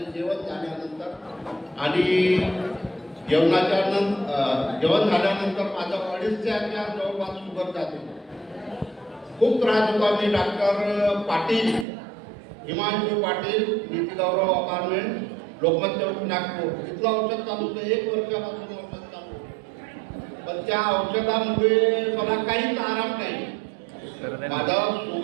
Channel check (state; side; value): drops out; left; at 11.9 s